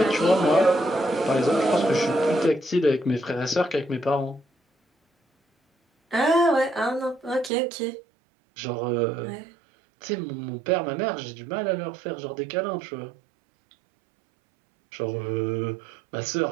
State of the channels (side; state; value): left; drops out; at 7.5 s